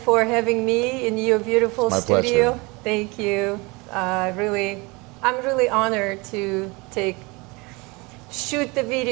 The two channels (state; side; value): quieter; left; 26.1 dB